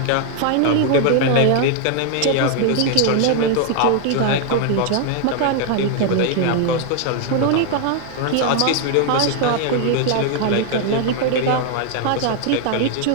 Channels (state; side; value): different; both; correlation 0.00